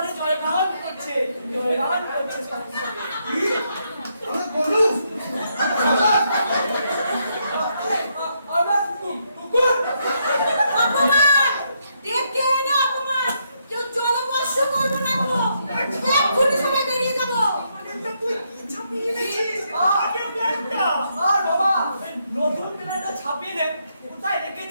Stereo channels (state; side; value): inverted; both; correlation -0.77